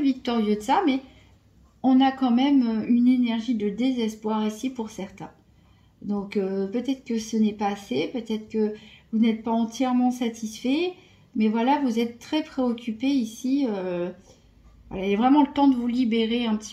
de ça, mais on a quand même une énergie de désespoir ici pour certains. Donc peut-être que ce n'est pas assez, peut-être que vous n'êtes pas entièrement satisfait, mais voilà, vous êtes très préoccupé ici. Voilà, il y a vraiment le temps de vous libérer un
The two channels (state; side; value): identical; both; correlation 1.00